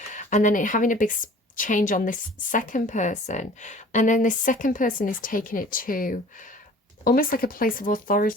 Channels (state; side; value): normal; both; correlation 0.48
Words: And then having a big change on this second person, and then this second person is taking it to almost like a place of